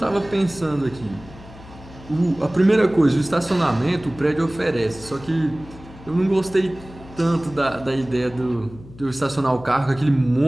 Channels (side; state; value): left; noise; hum, 19 dB below the sound